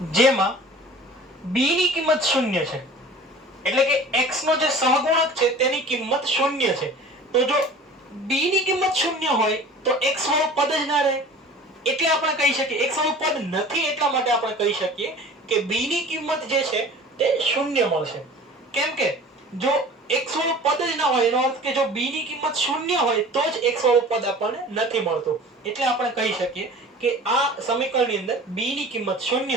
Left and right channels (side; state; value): both; normal; correlation 0.42